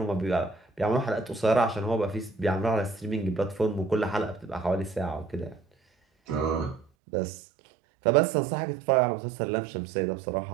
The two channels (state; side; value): drops out; left; at 6.9 s